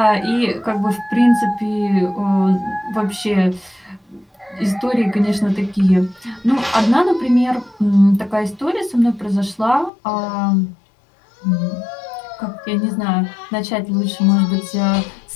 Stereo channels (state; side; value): drops out; right; at 9.9 s